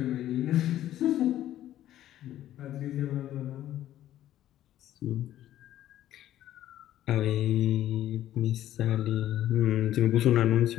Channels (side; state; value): right; quieter; 12.7 dB